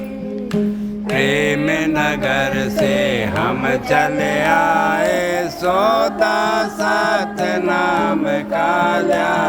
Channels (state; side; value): identical; both; correlation 1.00